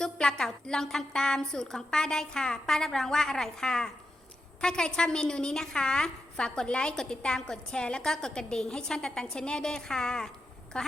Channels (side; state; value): both; normal; correlation 0.87